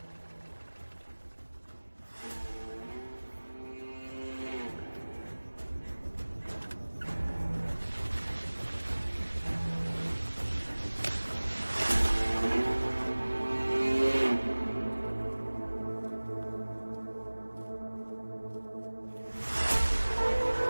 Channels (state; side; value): inverted; both; correlation -1.00